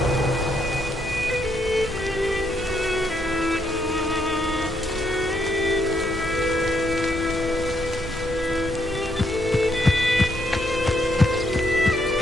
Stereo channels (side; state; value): both; normal; correlation 0.74